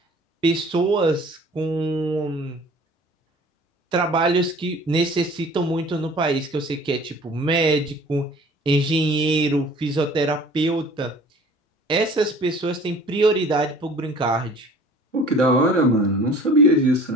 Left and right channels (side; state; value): both; normal; correlation 0.48